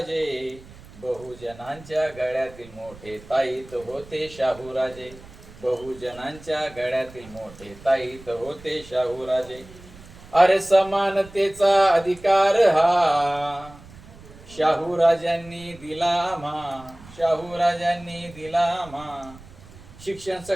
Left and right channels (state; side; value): noise; right; rumble, 20 dB below the sound